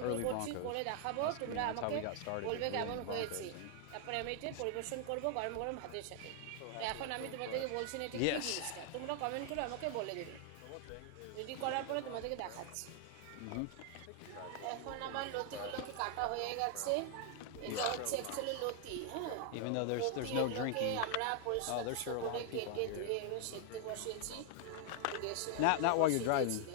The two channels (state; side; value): different; both; correlation 0.00